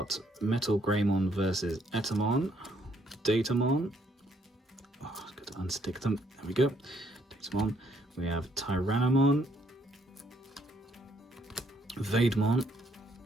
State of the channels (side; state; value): both; normal; correlation 0.69